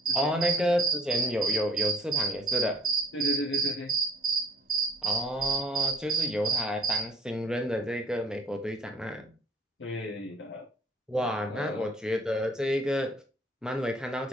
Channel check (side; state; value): both; normal; correlation 0.53